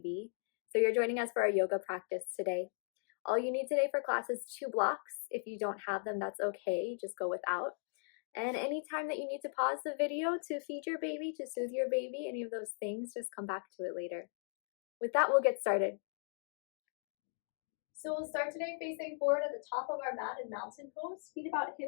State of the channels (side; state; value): right; silent; digital silence